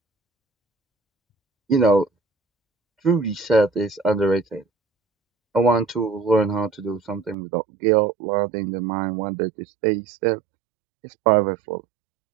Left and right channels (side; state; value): left; drops out; at 7.4 s